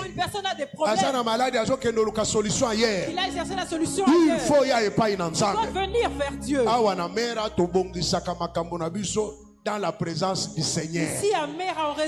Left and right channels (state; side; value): identical; both; correlation 1.00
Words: une personne a des problèmes, il a exercé la solution ailleurs. Il doit venir vers Dieu. Dans la présence du Seigneur. Ici à Mera, on